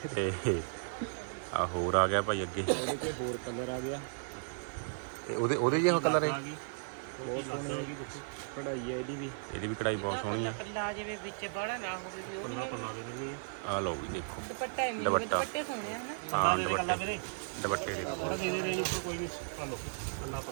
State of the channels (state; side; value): silent; left; digital silence